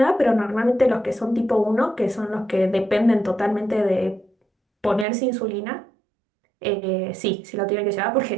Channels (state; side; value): drops out; left; at 5.1 s